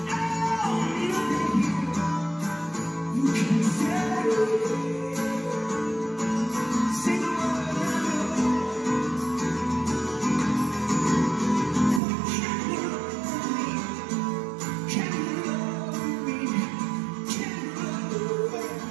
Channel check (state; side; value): drops out; left; at 12.0 s